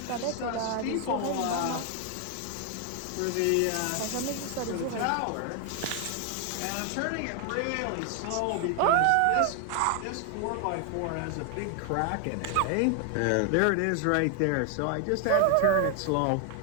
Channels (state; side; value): different; both; correlation 0.00